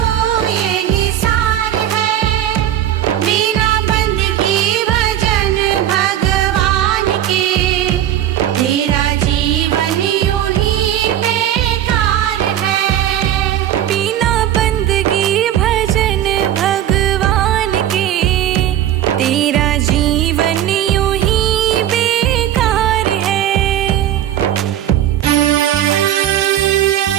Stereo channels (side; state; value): left; quieter; 11.6 dB